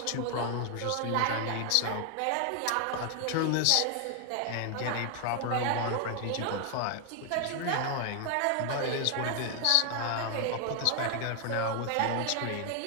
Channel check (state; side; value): different; both; correlation 0.00